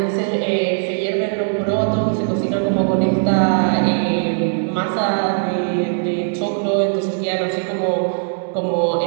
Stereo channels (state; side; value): silent; left; digital silence